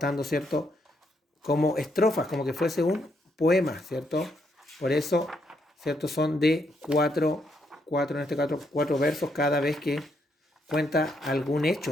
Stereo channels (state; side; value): normal; both; correlation 0.76